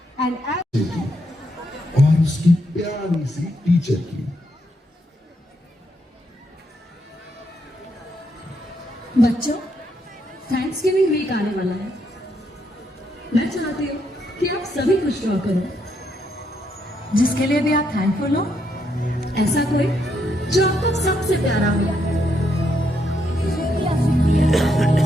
and और उसकी प्यारी सी teacher की। बच्चों, thanks giving week आने वाला है। मैं चाहती हूँ कि आप सभी कुछ ड्रॉ करो जिसके लिए भी आप थैंकफुल हो। ऐसा कोई जो आपको सबसे प्यारा हो।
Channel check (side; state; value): both; normal; correlation 0.77